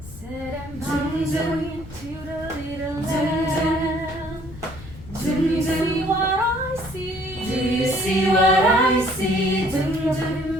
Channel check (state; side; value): noise; left; rumble, 16 dB below the sound